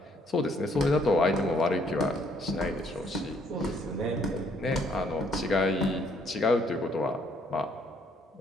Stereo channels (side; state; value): both; normal; correlation 0.67